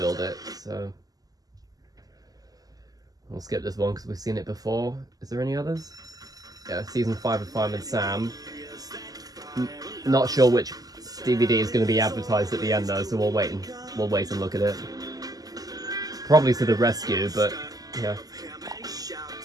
It. So we'll skip this one because we've seen it before. Is there any others? Yeah, season 5 of Fireman Sam. Not sure which DVD is going to be advertised at the end though, so we'll wait and look at it. Probably to the rescue, but yeah.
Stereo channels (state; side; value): late; left; 0.18 ms